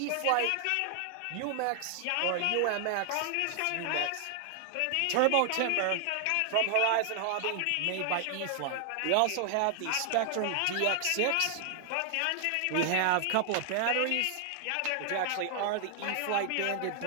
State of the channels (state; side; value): different; both; correlation 0.00